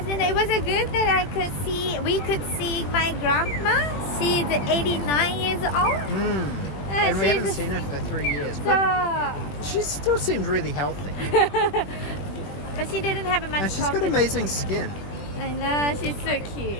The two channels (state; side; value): late; right; 20 ms